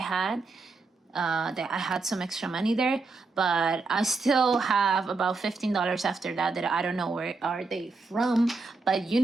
That I had some extra money there, but I still have about $15 after that I don't know where are they from. But you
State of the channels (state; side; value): quieter; left; 4.0 dB